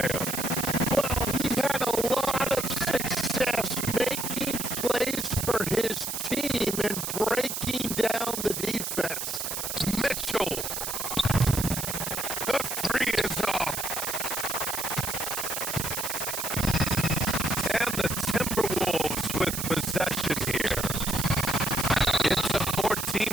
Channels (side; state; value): right; noise; hiss, 3 dB below the sound